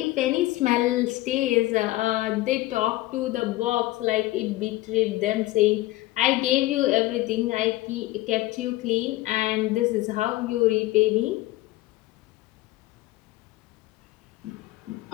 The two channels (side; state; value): right; quieter; 18.0 dB